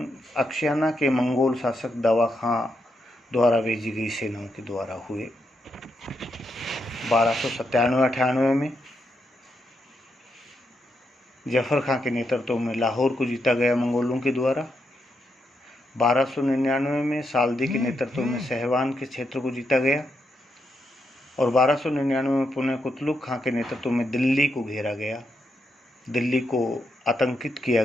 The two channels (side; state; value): both; normal; correlation 0.82